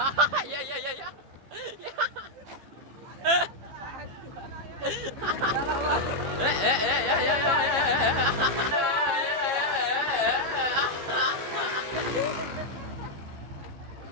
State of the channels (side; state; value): left; late; 15 ms